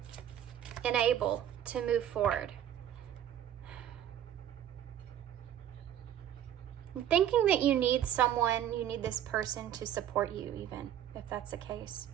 unable to move forward. Thinking that you need someone, you need this person to support you, even if that's the case.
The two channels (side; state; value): left; quieter; 10.7 dB